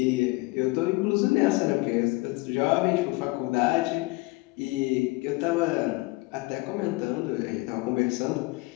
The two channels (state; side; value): quieter; right; 23.7 dB